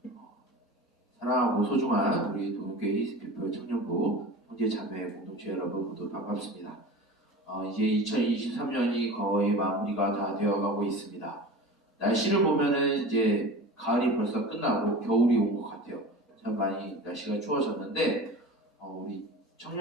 사랑하고 소중한 우리 동교회 히스피플 청년부 형제 자매 공동체 여러분 모두 반갑습니다. 이제 2023년이 거의 마무리가 다 되어가고 있습니다. 날씨를 보면은 이제 가을이 벌써 끝나고 겨울이 온 것 같아요. 참 많이 날씨가 추워졌는데 우리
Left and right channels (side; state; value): both; normal; correlation 0.34